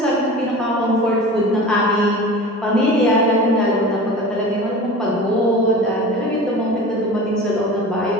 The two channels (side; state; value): both; normal; correlation 0.36